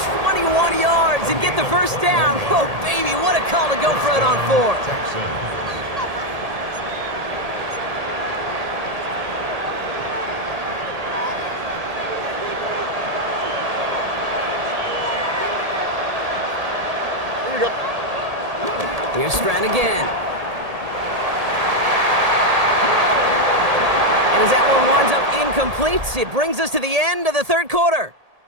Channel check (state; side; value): late; left; 1.8 ms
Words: 21 yards and get the first down. Oh, baby, what a call to go for it on 4th. Texans. Here we go. Here's Stroud again. And as that one winds up incomplete, it brings us to the end of the 3rd quarter.